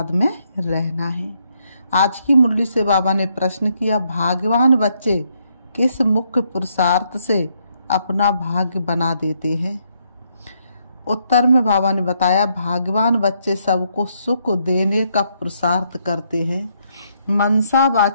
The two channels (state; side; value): inverted; both; correlation -0.74